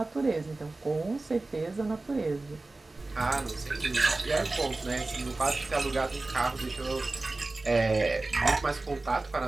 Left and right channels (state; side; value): quieter; left; 3.2 dB